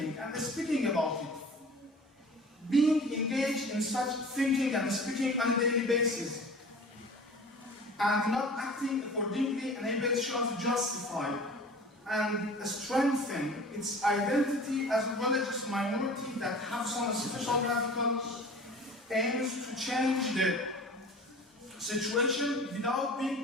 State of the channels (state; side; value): normal; both; correlation 0.42